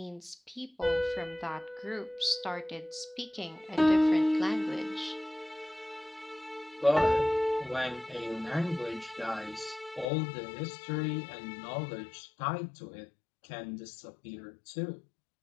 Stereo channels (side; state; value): right; drops out; at 10.1 s